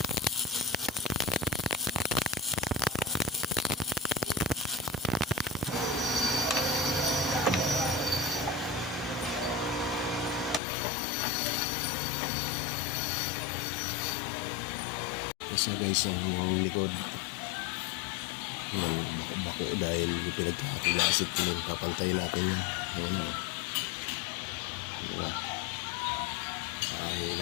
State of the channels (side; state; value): right; drops out; at 10.6 s